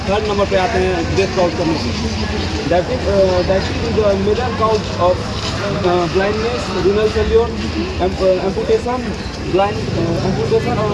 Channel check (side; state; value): both; identical; correlation 1.00